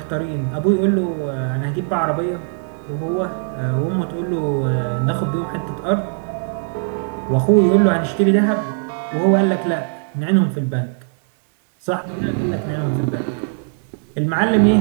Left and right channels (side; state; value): left; silent; 62 dB below the other